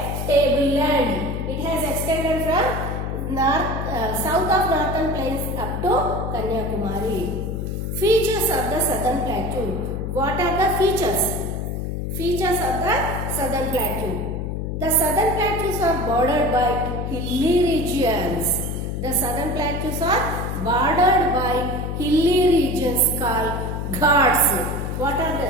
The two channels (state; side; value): noise; left; hum, 3 dB below the sound